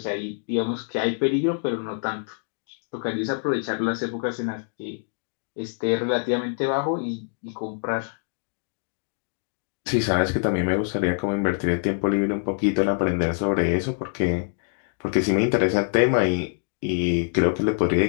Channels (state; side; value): silent; right; digital silence